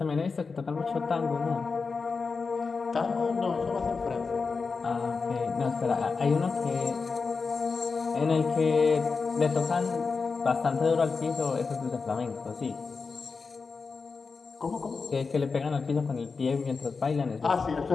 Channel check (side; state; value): right; quieter; 4.7 dB